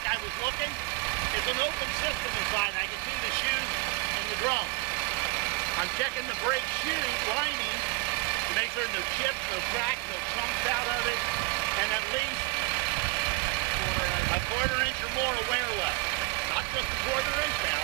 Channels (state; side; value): quieter; left; 26.3 dB